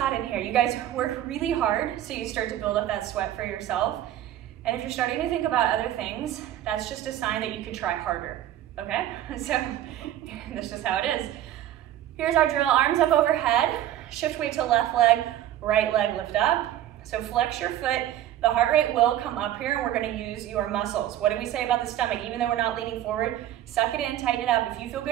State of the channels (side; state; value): left; quieter; 12.4 dB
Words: in here. You guys work really hard, so you start to build up that sweat for yourself. And if you're starting to think about other things, that's just a sign that you could try harder, okay? So that's just how it is. Here's our drill, arms up overhead, shift weight to left leg, right leg lift up. So flex your foot, the heart rate will come up here and we're gonna use your muscles. What do we say about the stomach? Even though we're not leaning forward, suck it in, tighten it up. If you feel